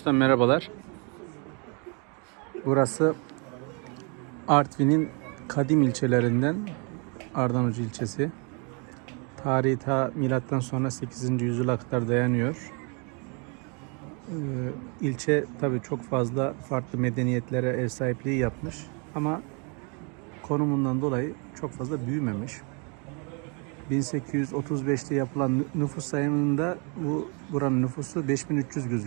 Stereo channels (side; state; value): left; quieter; 34.9 dB